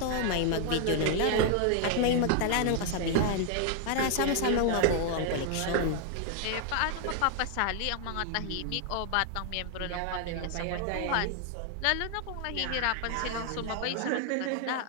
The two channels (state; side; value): different; both; correlation 0.00